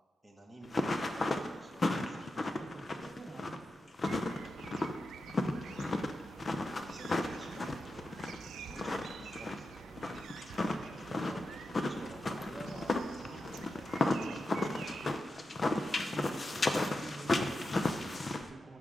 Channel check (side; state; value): both; normal; correlation 0.90